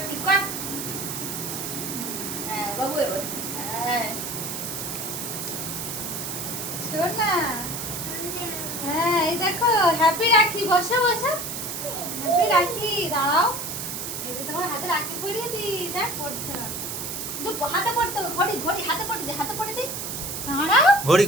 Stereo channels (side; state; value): right; noise; hiss, 5 dB below the sound